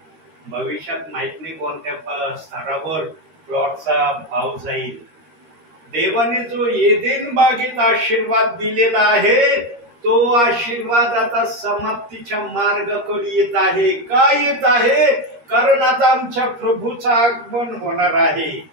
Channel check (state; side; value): late; left; 13 ms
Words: भविष्यात माहित नाही कोणत्या स्तरावर प्लॉटचा भाव जाईल. देवाने जो एदेन बागेत आशीर्वाद दिलेला आहे, तो आशीर्वाद आता समाप्तीच्या मार्गाकडे येत आहे. का येत आहे? कारण आता आमच्या प्रभूचं आगमन होणार आहे.